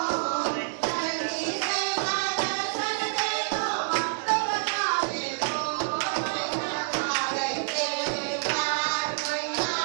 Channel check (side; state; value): left; silent; digital silence